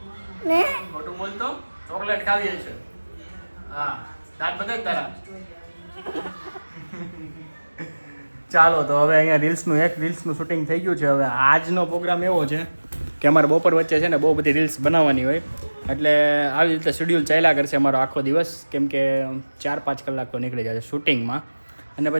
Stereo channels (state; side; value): inverted; both; correlation -1.00